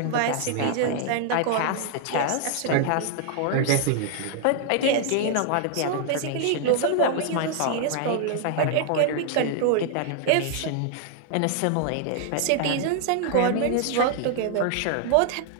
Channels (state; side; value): different; both; correlation 0.00